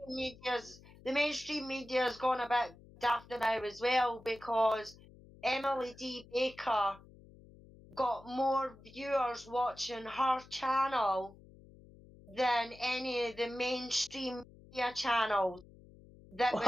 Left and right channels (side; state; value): left; noise; hum, 22 dB below the sound